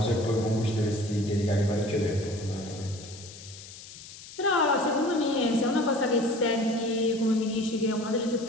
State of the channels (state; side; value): noise; left; hiss, 16 dB below the sound